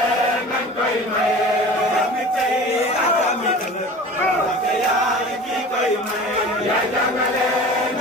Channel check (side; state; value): both; normal; correlation 0.39